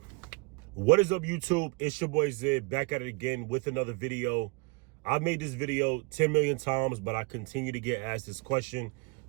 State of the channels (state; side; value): quieter; left; 29.0 dB